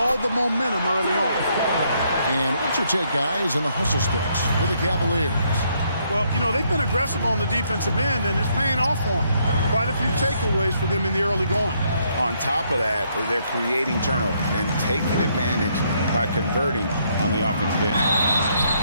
the momentum early on. And what's your take, guys, in the hustle sticks for the Cavaliers? Well, you know, they've been aggressive on the defensive end, and it's paying off for them. Quite a few takeaways for them in the early going. On top of that, they're creating turnovers and taking advantage by converting on the offensive end.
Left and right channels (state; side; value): inverted; both; correlation -0.72